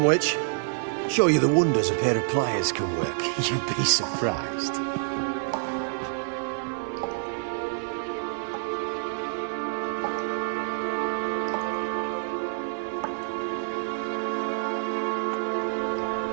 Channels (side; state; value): left; silent; digital silence